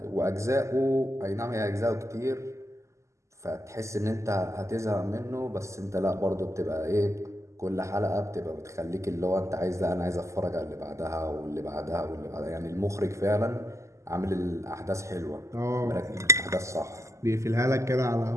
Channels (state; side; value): late; left; 0.14 ms